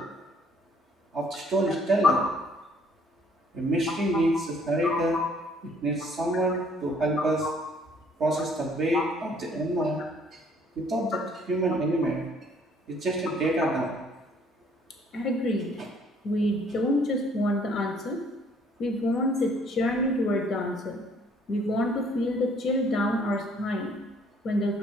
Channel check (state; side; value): normal; both; correlation 0.62